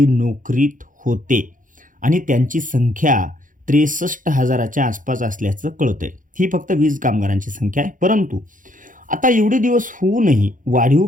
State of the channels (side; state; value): left; late; 0.38 ms